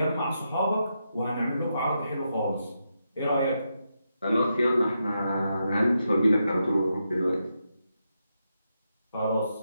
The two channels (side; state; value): both; inverted; correlation -0.84